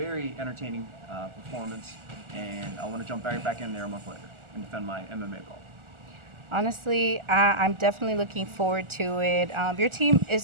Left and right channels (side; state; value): left; late; 1.4 ms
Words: entertaining performance, and I want to jump right back in there a month later and defend my MMA belt. Honestly, I'm definitely looking forward to it. Your team is